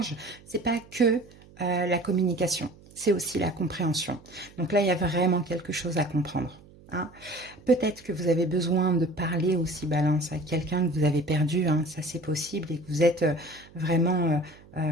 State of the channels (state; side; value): noise; right; hum, 24 dB below the sound